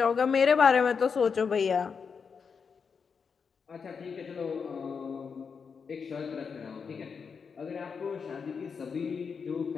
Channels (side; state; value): right; quieter; 5.9 dB